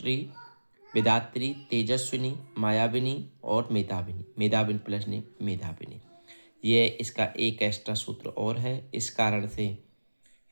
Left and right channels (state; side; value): inverted; both; correlation -1.00